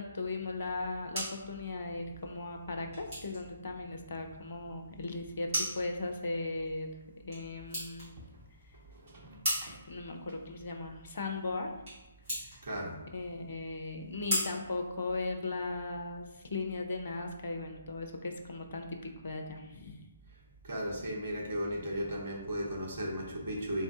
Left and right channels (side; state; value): both; inverted; correlation -0.74